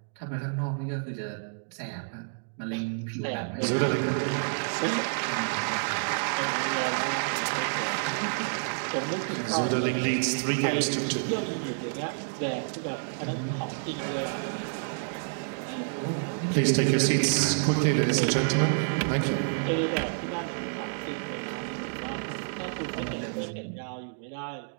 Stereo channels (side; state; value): left; silent; digital silence